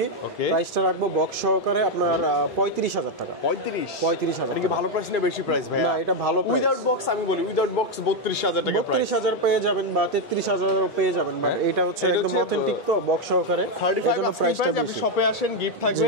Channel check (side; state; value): both; normal; correlation 0.04